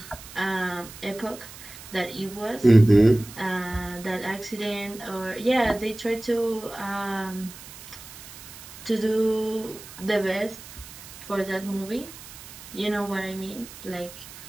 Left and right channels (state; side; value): noise; right; hiss, 16 dB below the sound